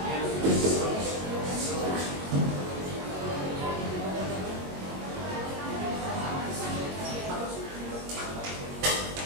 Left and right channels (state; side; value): late; left; 22 ms